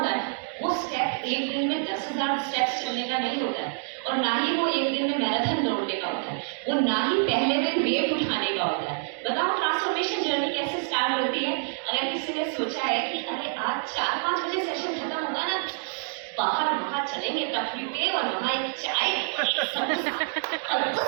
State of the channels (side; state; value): left; silent; 60 dB below the other